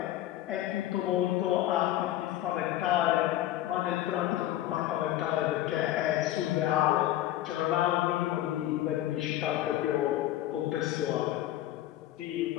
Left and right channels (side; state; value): right; quieter; 13.9 dB